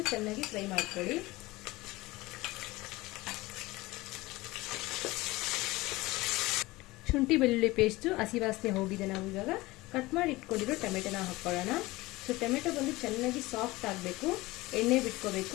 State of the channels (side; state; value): right; quieter; 20.3 dB